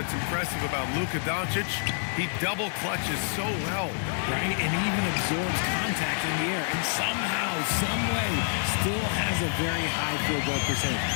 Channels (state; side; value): silent; right; digital silence